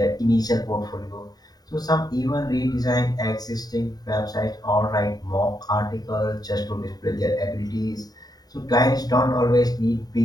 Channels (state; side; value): late; right; 0.19 ms